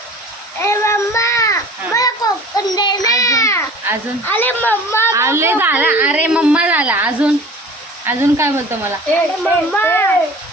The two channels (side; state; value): both; normal; correlation 0.44